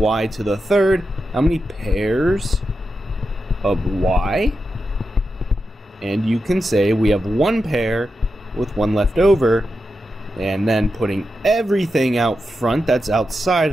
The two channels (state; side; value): normal; both; correlation 0.88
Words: to the 3rd, how many pairs of y? And you can say we have 1 pair with 1 left over. And then putting everything out front that's outside